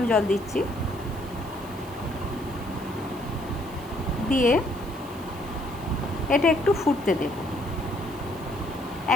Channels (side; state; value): right; noise; hiss, 21 dB below the sound